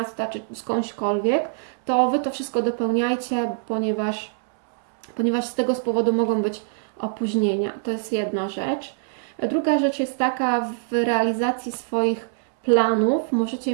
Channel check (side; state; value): left; silent; 63 dB below the other